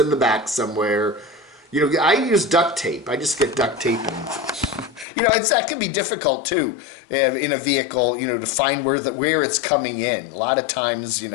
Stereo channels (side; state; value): right; drops out; at 5.1 s